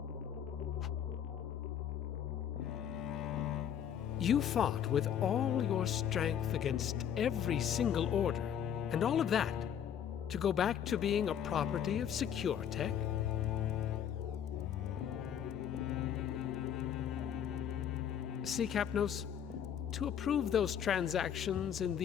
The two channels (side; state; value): right; quieter; 9.1 dB